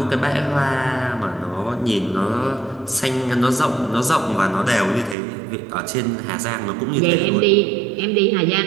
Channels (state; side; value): drops out; left; at 5.2 s